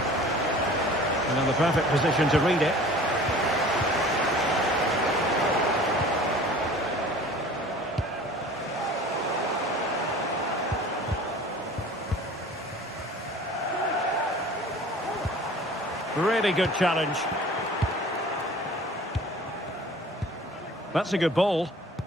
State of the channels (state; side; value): normal; both; correlation 0.45